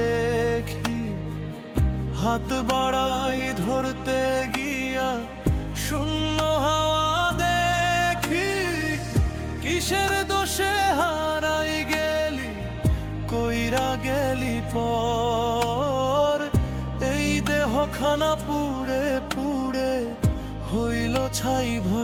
হাত বাড়াই ধরতে গিয়া শূন্য হাওয়া দেখি। কিসের দোষে হারাই গেলি, কইরা গেলি পর, এই দেহখানা পুড়ে পুড়ে হইল ছাই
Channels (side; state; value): both; identical; correlation 1.00